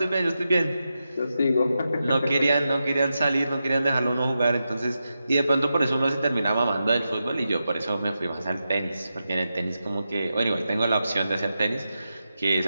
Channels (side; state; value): both; inverted; correlation -0.89